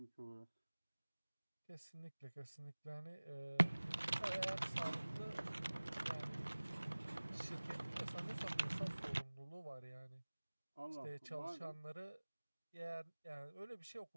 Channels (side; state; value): both; inverted; correlation -1.00